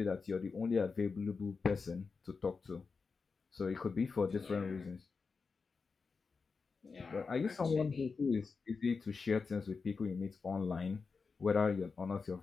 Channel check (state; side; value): quieter; right; 4.8 dB